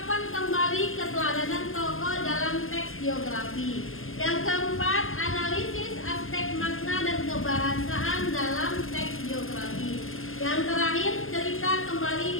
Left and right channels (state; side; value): late; right; 0.60 ms